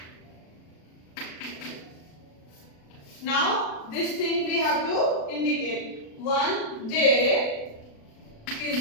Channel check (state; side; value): late; right; 36 ms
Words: Now this thing we have to indicate. One day